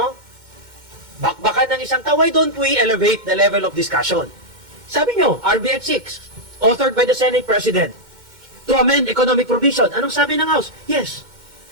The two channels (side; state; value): left; late; 2.2 ms